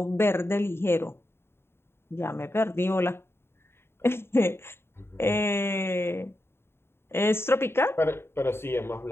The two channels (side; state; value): right; late; 0.11 ms